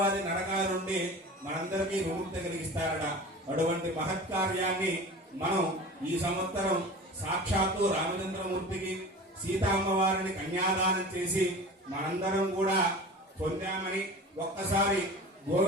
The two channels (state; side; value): normal; both; correlation 0.36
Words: నరకాల నుండి మనందరికీ విముక్తి కలిగిస్తారట. అటువంటి మహత్కార్యాన్ని మనం ఈ సంవత్సరం సాక్షాత్తు రామచంద్రమూర్తికి సీతామ్మవారిని కన్యాదానం చేసి మనందరం కూడా పొందామని ఒక్కసారి